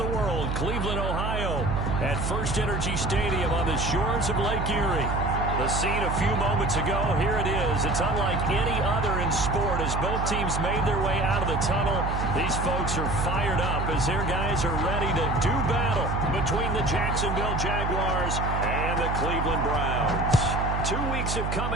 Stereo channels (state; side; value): noise; right; hum, 1 dB below the sound